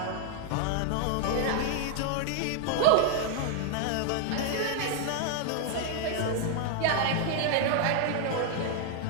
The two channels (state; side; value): different; both; correlation 0.00